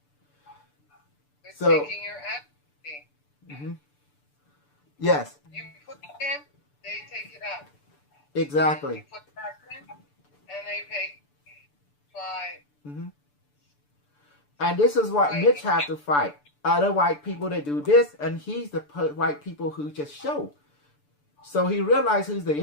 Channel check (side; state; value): right; late; 6.8 ms